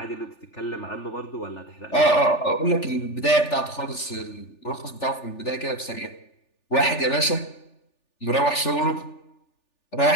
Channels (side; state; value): right; late; 3.4 ms